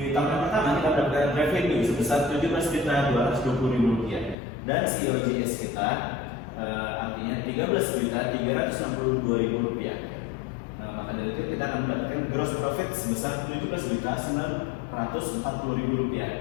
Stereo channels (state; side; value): drops out; right; at 4.4 s